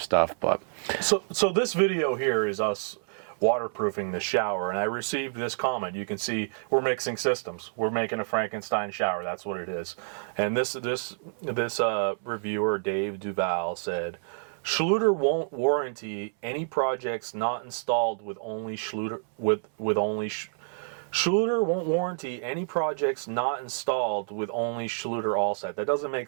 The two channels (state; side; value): silent; left; 59 dB below the other